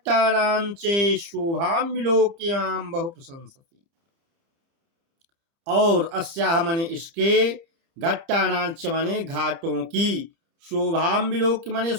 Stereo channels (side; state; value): left; late; 30 ms